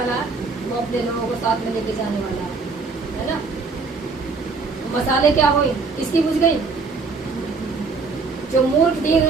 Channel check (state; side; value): quieter; left; 4.3 dB